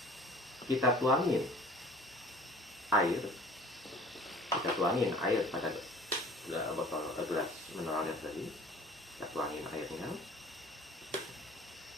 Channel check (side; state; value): both; normal; correlation 0.46